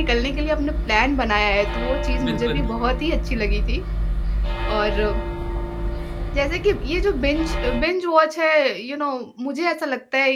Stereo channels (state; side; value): identical; both; correlation 1.00